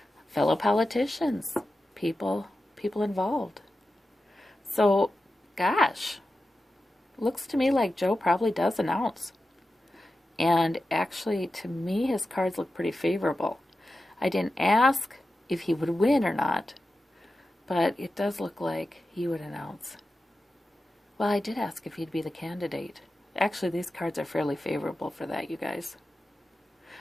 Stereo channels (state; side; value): normal; both; correlation 0.92